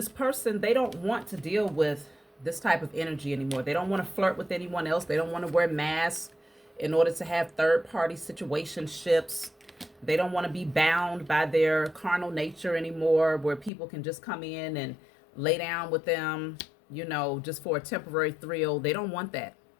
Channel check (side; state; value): right; drops out; at 13.7 s